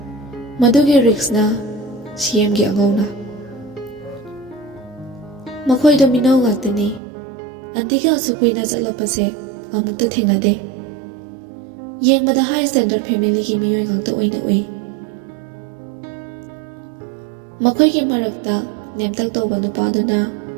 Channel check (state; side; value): drops out; left; at 7.0 s